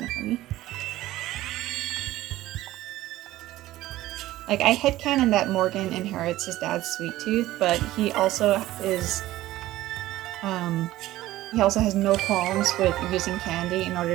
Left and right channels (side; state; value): left; quieter; 15.9 dB